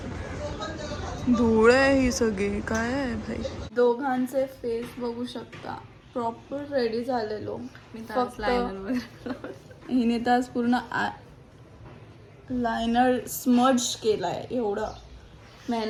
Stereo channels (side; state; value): both; identical; correlation 1.00